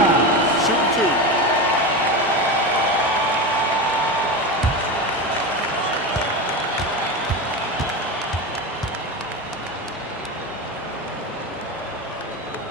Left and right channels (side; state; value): both; normal; correlation 0.21